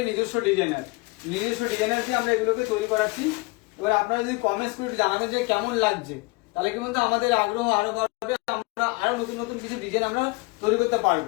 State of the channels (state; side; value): quieter; right; 25.8 dB